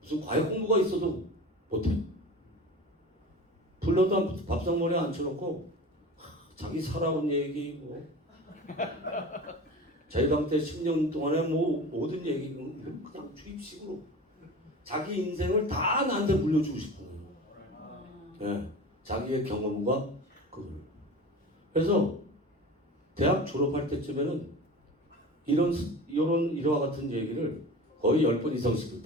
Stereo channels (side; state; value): both; normal; correlation 0.34